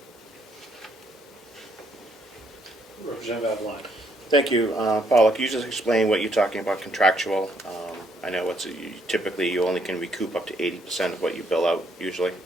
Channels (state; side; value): normal; both; correlation 0.70